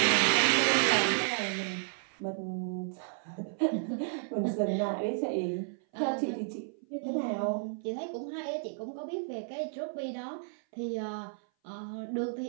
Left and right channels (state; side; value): silent; left; 56 dB below the other